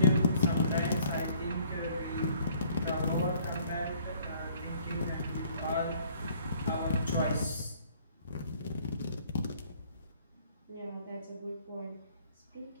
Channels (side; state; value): both; inverted; correlation -0.58